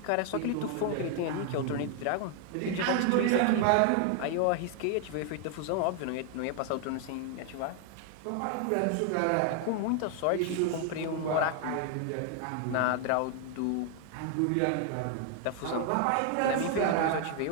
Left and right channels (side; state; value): both; different; correlation 0.00